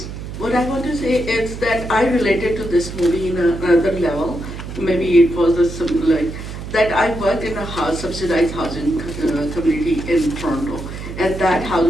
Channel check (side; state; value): right; noise; hum, 9 dB below the sound